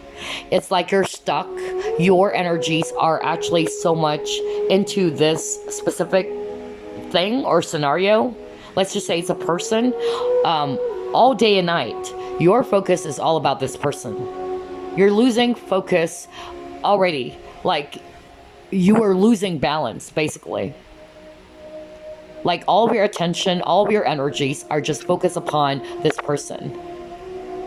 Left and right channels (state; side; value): identical; both; correlation 1.00